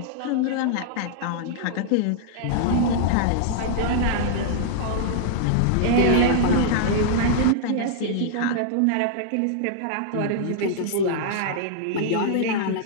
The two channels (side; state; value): both; different; correlation -0.01